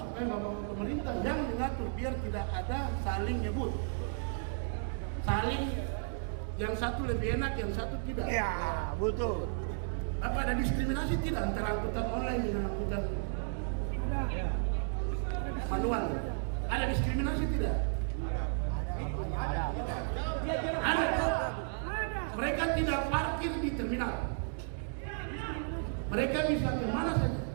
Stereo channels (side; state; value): left; silent; digital silence